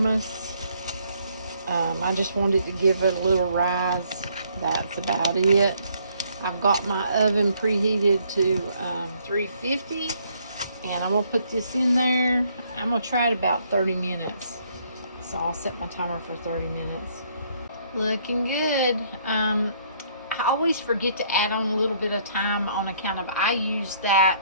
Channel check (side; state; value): both; inverted; correlation -0.67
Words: I just wanted to give it a little rise. That's about it. I've got my oven preheated to 350, and I'm going to put this in there. I'm going to try it about 30 minutes. So I'll set my timer for 30 minutes. Looking good. I always forget to add on a little bit of time on account of I use